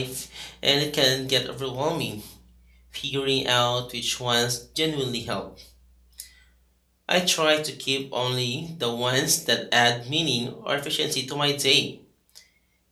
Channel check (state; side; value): identical; both; correlation 1.00